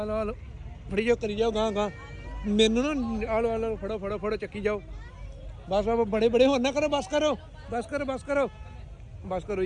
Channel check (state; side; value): identical; both; correlation 1.00